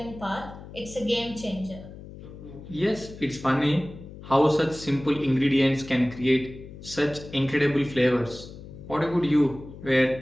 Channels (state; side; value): noise; left; hum, 15 dB below the sound